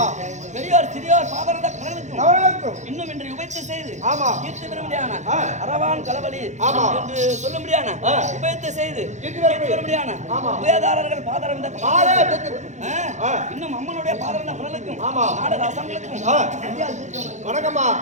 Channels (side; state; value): left; late; 0.34 ms